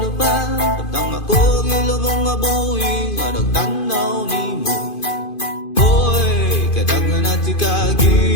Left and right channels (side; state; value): right; late; 2.5 ms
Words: tapang ako gilong nga buhi nga nagtanaw ni mo hoy kadaghan na tikagi